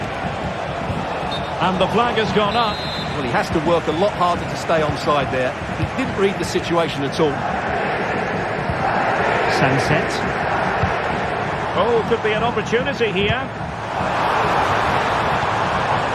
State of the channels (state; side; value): identical; both; correlation 1.00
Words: And the flag has gone up. Well, he has to work a lot harder to stay onside there. He didn't read the situation at all. Sunset. Oh, could be an opportunity here.